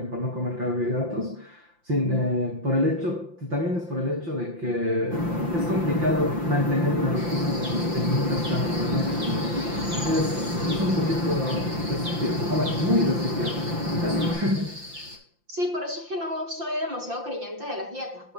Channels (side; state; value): left; late; 5.8 ms